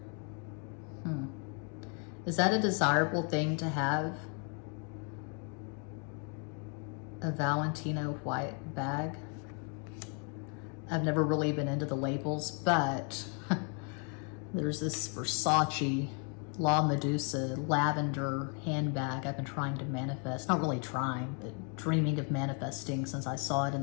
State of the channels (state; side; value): quieter; right; 39.0 dB